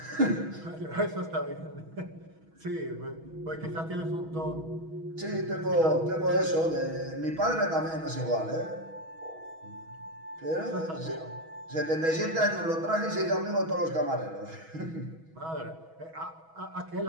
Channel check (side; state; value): left; late; 6.2 ms